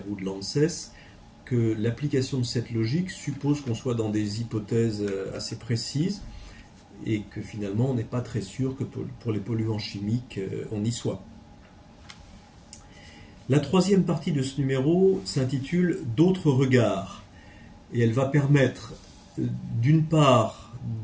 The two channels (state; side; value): identical; both; correlation 1.00